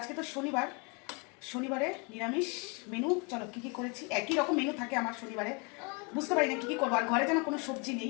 তো শনিবারে নিরামিষ মেনু। চলো কী কী করেছি, একই রকম মেনু থাকে আমার শনিবারে, বুঝতে পারি না কী কী করবো। আর ঘরে যেন কোনো সবজি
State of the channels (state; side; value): quieter; right; 32.5 dB